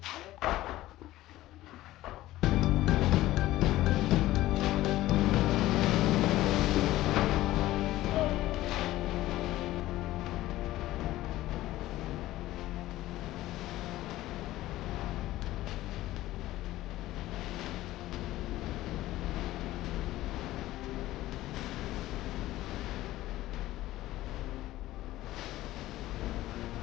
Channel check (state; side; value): quieter; right; 15.9 dB